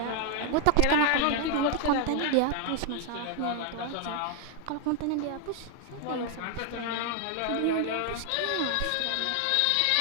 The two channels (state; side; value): different; both; correlation 0.01